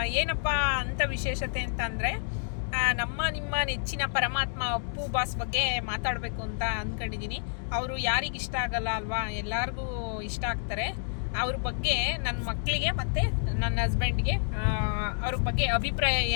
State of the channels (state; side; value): silent; right; digital silence